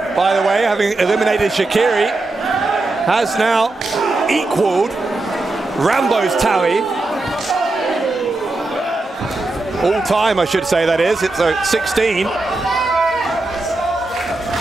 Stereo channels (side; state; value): left; quieter; 3.0 dB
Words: by the way, having eliminated Shaqiri, has now equaled Rambo's tally. All time, I should say, that is. It's 16.